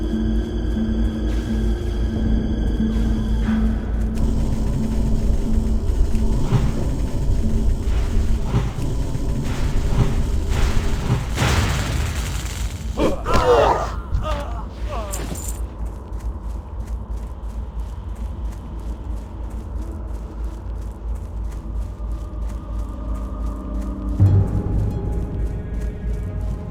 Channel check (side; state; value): both; identical; correlation 1.00